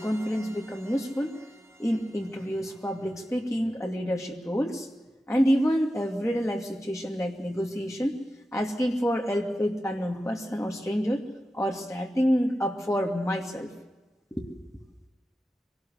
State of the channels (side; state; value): both; normal; correlation 0.92